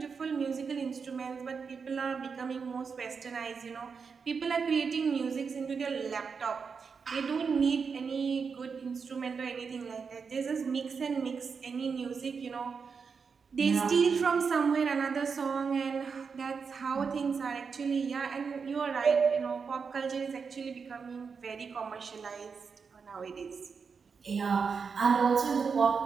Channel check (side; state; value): left; quieter; 5.6 dB